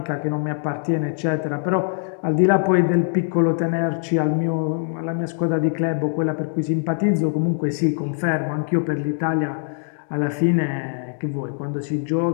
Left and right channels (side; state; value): right; silent; 63 dB below the other